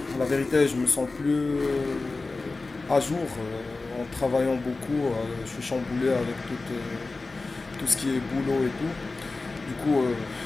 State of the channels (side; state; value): right; quieter; 3.6 dB